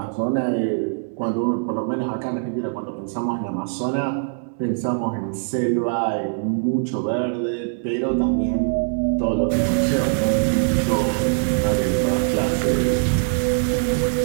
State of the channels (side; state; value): left; silent; digital silence